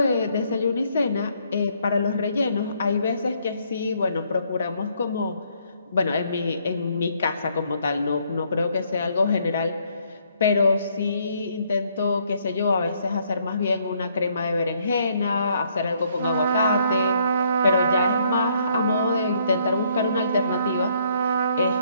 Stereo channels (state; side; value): inverted; both; correlation -0.68